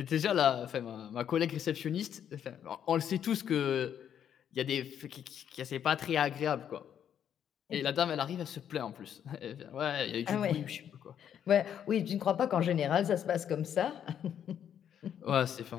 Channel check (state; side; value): quieter; right; 9.2 dB